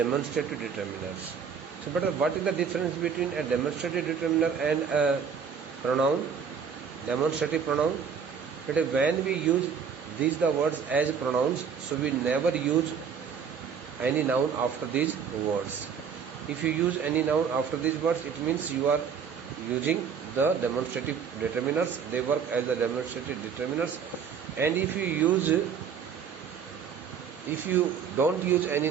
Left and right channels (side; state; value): left; quieter; 6.7 dB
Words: determiners. So, but what is the difference between a demonstrative determiner and a pronoun? Demonstrative pronoun. But when we use these the words as pronouns, so we never use any noun after these words. If you use any noun after these words, it means you are using the demonstrative determiners. They work as the demonstrative determiners. And if you don't use any